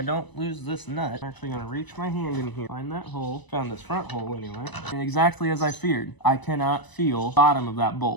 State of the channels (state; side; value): late; right; 1.0 ms